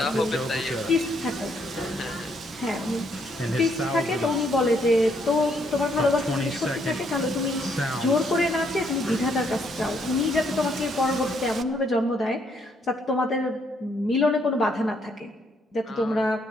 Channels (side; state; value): both; normal; correlation 0.71